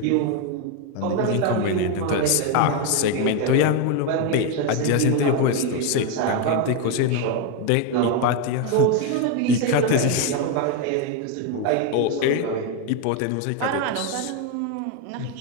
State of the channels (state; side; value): different; both; correlation 0.02